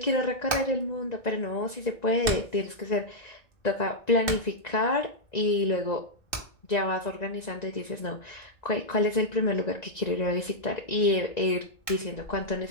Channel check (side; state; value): right; late; 1.9 ms